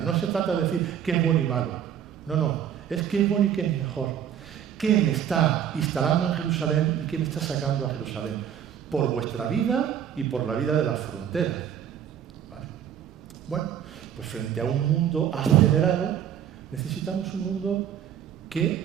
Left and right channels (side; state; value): left; quieter; 9.3 dB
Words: No se trata de decir qué es bueno y malo. No, es qué es bueno y qué es mejor. ¿Qué me está instalando en Jerusalén y qué me está sacando a Jerusalén? Por vuestra vida y por la vida de las fronteras. ¿Vale? Bueno, pues frente a un mundo acelerado, necesitamos un mundo